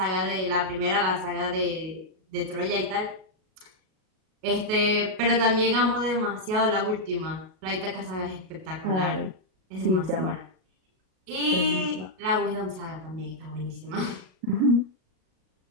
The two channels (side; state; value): left; late; 38 ms